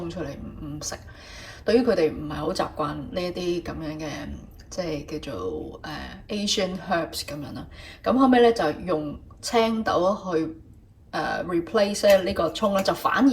出嚟唔食，對於佢哋唔係好習慣呢一啲咁樣嘅即係叫做Asian herbs 咁樣啦。咁後尾咧就用青豆去replace 呢個葱咧，就反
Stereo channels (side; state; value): both; identical; correlation 1.00